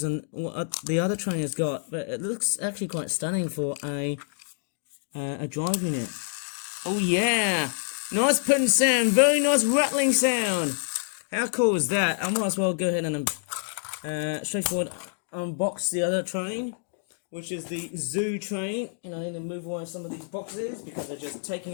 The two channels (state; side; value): silent; right; 60 dB below the other